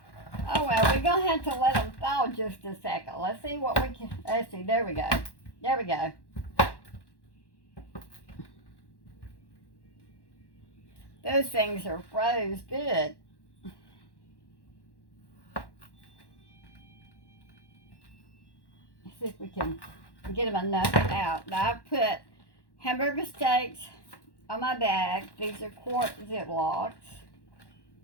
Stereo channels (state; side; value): late; right; 1.1 ms